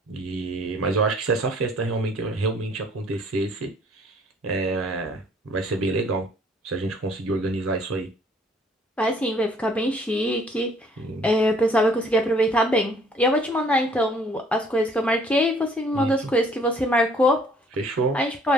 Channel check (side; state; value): both; normal; correlation 0.59